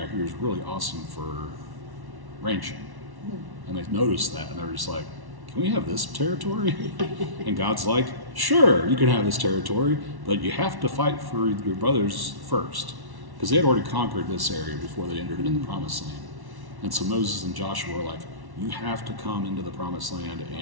here is really awesome for ranching. And they noticed that, and they're just like, can we have this territory? And God's like, sure, you can have this territory, but you have to fight for your brothers first. Because they had already conquered this area before they entered into the promised land. And so Moses and Joshua were like, you have to come into the promised land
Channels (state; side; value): late; left; 1.1 ms